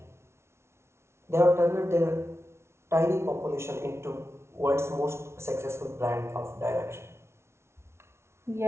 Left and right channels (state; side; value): late; left; 0.13 ms